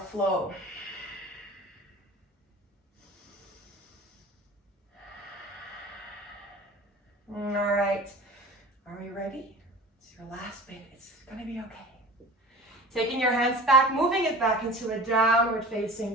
All right, are we ready? It's your last bit, it's gonna be okay. Taking your hands back, moving it back into a downward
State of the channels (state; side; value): normal; both; correlation 0.38